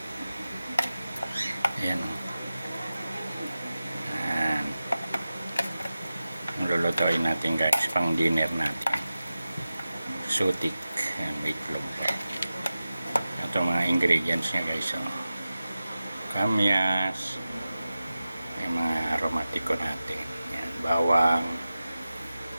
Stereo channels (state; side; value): inverted; both; correlation -0.94